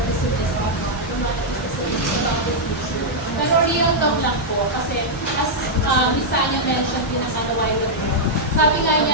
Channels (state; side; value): normal; both; correlation -0.05